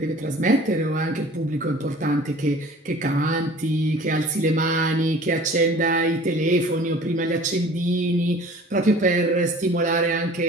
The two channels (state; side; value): normal; both; correlation 0.46